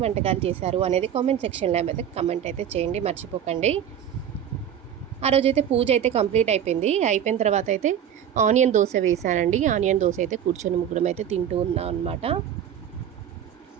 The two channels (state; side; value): quieter; left; 9.5 dB